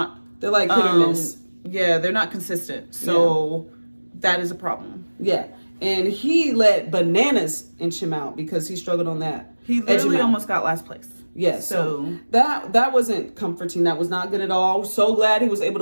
They're like hit or miss. Yeah, they're not consistent. So that is a problem. Yeah, and he let bananas inch him out because he struggled on that. He literally almost got last place. Yeah, so that wasn't comforting. That was not good at all. So glad he was able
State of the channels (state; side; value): inverted; both; correlation -1.00